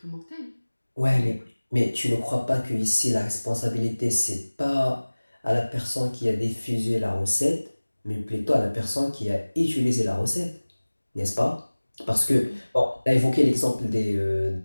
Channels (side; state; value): both; inverted; correlation -1.00